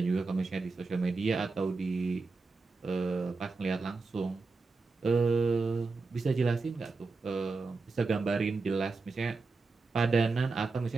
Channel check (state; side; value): quieter; left; 4.0 dB